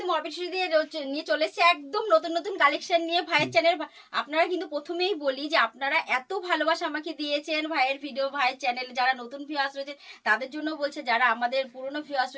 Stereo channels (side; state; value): both; identical; correlation 1.00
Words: মরপিট দিয়ে নিয়ে চলে এসেছে একদম নতুন নতুন কালেকশন নিয়ে ভাইয়ের চ্যানেল। আপনারা কিন্তু প্রথমেই বলি যে আপনারা এত ভালোবাসা আমাকে দিয়েছেন ভাইয়ের ভিডিও, ভাইয়ের চ্যানেল যারা নতুন ভিউয়ার্স রয়েছে তাদের জন্য বলছে, যারা আমাদের পুরনো ভিউয়ার্স